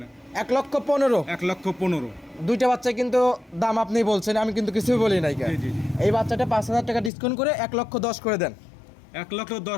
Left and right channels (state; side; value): drops out; right; at 7.1 s